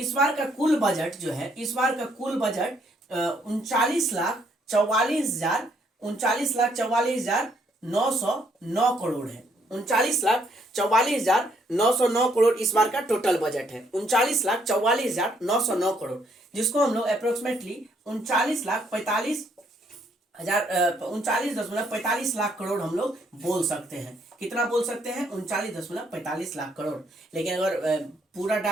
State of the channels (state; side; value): normal; both; correlation 0.70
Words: बार का कुल बजट जो है, इस बार का कुल बजट 39,44,909 करोड़ है। 39,44,909 करोड़ इस बार का टोटल बजट है। 39,44,909 करोड़, जिसको हम लोग अप्रोक्सीमेटली 39,45 लाख करोड़ हम लोग बोल सकते हैं। कितना बोल सकते हैं, 39,45 लाख करोड़। लेकिन अगर पूरा